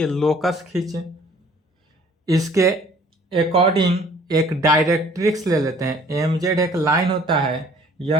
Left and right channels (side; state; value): both; normal; correlation 0.55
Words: लोकस खींचे। इसके अकॉर्डिंग एक डायरेक्ट्रिक्स ले लेते हैं। एम जेड एक लाइन होता है,